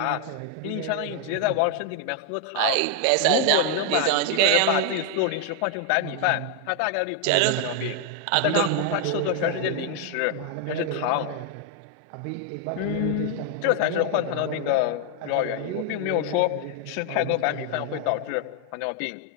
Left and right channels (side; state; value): both; different; correlation 0.00